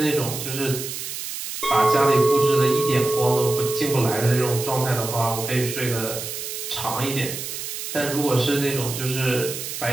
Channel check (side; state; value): right; noise; hiss, 7 dB below the sound